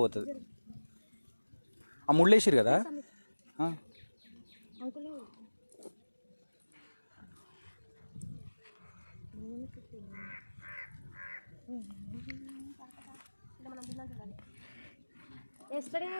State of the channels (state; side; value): inverted; both; correlation -1.00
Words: ఆ ముళ్ళు వేసిరు కదా uncle. yesterday